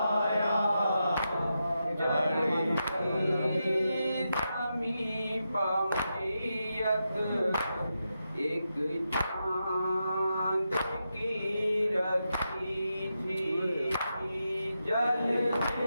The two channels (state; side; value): inverted; both; correlation -0.87